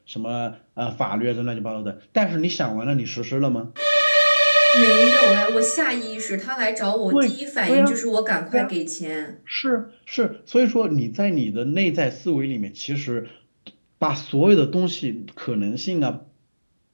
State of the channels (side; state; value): both; inverted; correlation -1.00